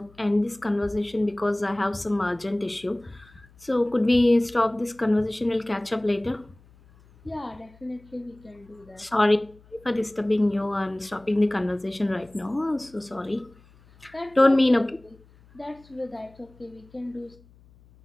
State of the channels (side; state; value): left; noise; hum, 27 dB below the sound